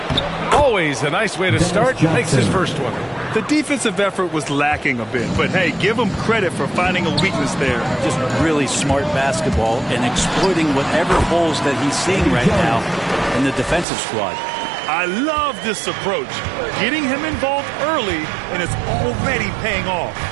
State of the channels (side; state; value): left; drops out; at 13.9 s